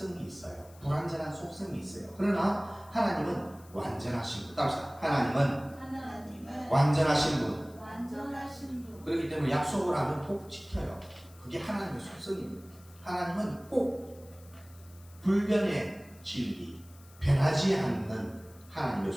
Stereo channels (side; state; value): left; noise; hiss, 25 dB below the sound